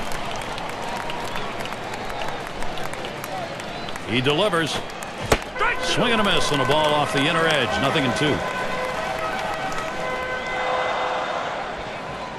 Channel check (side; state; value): both; identical; correlation 1.00